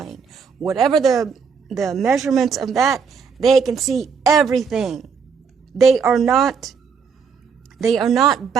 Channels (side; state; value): left; quieter; 6.1 dB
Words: Whatever the measurements of that, they can see everything. They are not